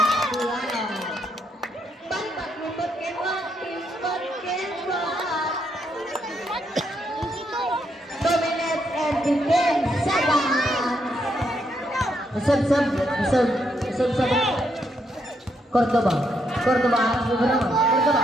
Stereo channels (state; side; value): normal; both; correlation 0.77